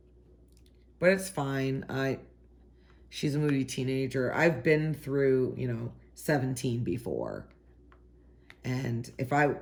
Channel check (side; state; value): both; identical; correlation 1.00